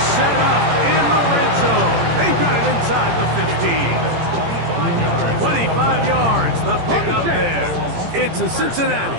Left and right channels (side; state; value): left; late; 18 ms